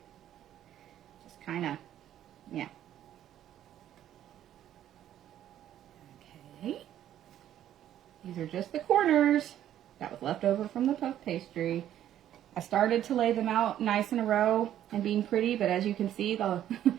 just kind of, yeah. Okay, these are just the corners that was left over from the puff pastry. I started to lay them out nice in a row and being pretty, but as you can see, the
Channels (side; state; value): left; quieter; 11.5 dB